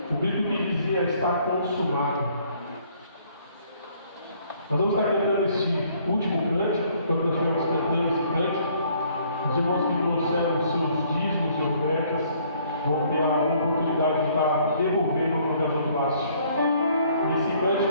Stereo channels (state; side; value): inverted; both; correlation -0.62